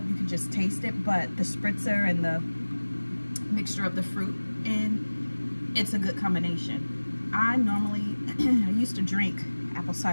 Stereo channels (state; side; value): inverted; both; correlation -1.00